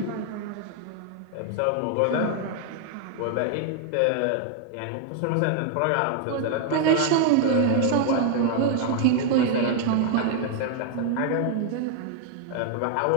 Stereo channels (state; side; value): different; both; correlation 0.00